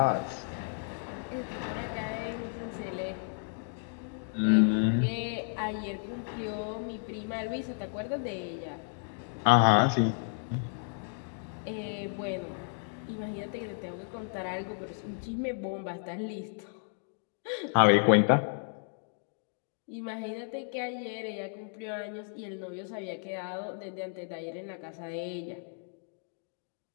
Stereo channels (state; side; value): silent; right; 56 dB below the other